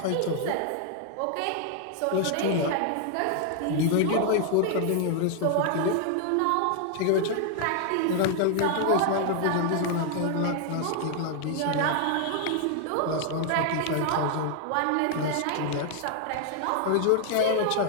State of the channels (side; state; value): both; different; correlation 0.00